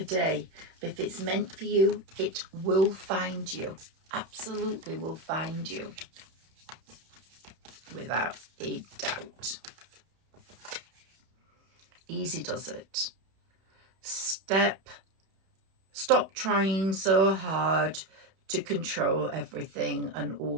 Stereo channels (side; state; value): left; late; 31 ms